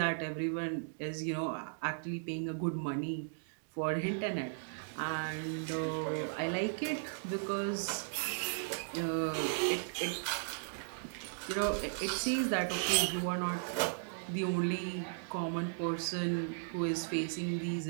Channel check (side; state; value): left; silent; digital silence